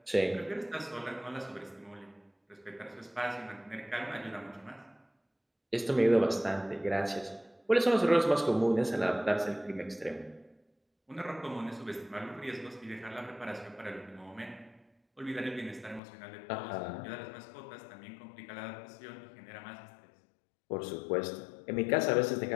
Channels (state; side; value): drops out; right; at 16.0 s